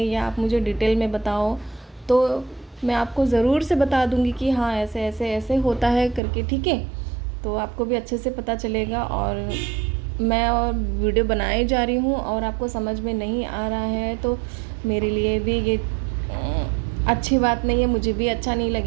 या आप मुझे डिटेल में बताओ। तो मैं आपको ज़रूर से बता दूंगी कि हाँ ऐसे ऐसे ऐसे होता है करके, ठीक है। तो आपको भी अच्छे से पता चलेगा। और मैं और वीडियो बनाए जा रही हूँ और आपको समझ में नहीं आ रहा है तो मेरे लिए भी ये अच्छी बात नहीं है, मुझे भी अच्छा नहीं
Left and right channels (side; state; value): left; drops out; at 6.2 s